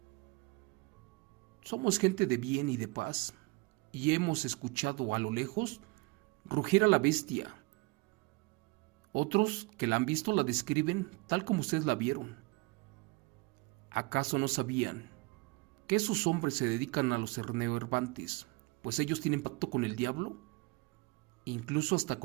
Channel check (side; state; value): left; quieter; 25.3 dB